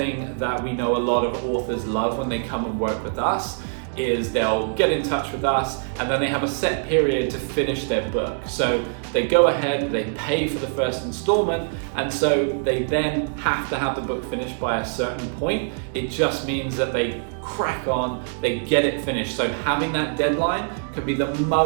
that we know a lot of authors love when they come and work with us, is they'll get in touch with us and then they have a set period to finish their book. So they go ahead, they pay for the first installment, and so they then have to have the book finished by a certain point. It just means that they crack on, they get it finished. So having that deadline can be the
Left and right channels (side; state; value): left; silent; digital silence